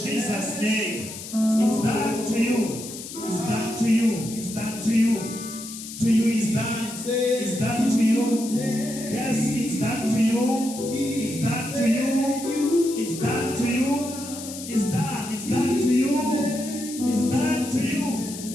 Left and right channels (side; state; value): left; noise; hiss, 11 dB below the sound